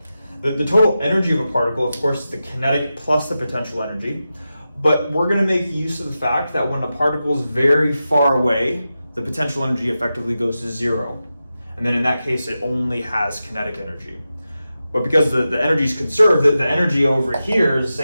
The total energy of a particle, of course, is the kinetic plus the potential energy. But we're going to make use of the fact that when a particle is very far away, the potential energy effectively goes to 0. And then in that case, it only has kinetic energy. But because the energy is conserved, the energy over here is the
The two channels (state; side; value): inverted; both; correlation -0.91